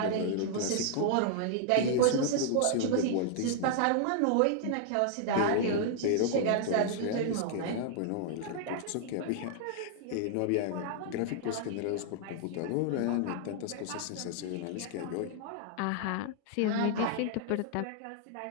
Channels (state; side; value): different; both; correlation 0.00